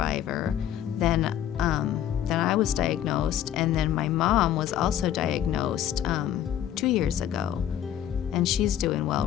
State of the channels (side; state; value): right; quieter; 10.7 dB